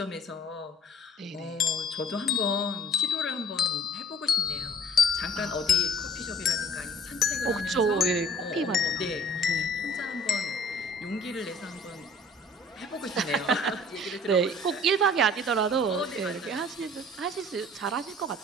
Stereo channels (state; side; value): normal; both; correlation 0.51